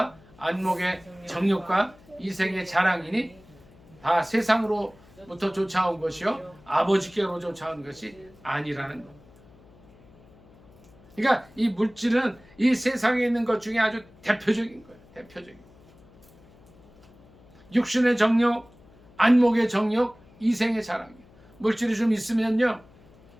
안목의 정욕과 이생의 자랑이니 다 세상으로부터 쫓아온 것이요 아버지께로 쫓아온 것이 아니라는 것. 그러니까 이 물질은 이 세상에 있는 것 중에 아주 대표적인 거예요. 대표적인. 육신의 정욕, 안목의 정욕, 이생의 자랑. 물질이 좀 있으면요,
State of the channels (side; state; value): left; noise; hum, 26 dB below the sound